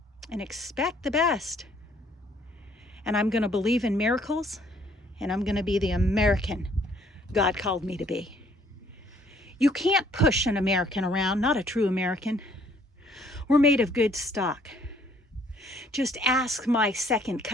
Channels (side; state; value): both; normal; correlation 0.62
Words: and expect the best. And I'm going to believe in miracles, and I'm going to be the American God called me to be. You can't push an American around, not a true American. We're made of good stock. Just ask my second